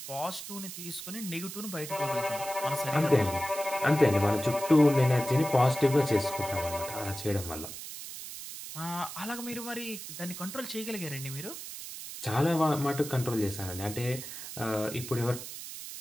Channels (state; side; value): noise; right; hiss, 10 dB below the sound